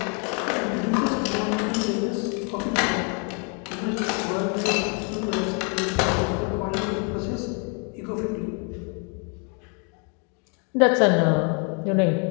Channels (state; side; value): quieter; right; 36.8 dB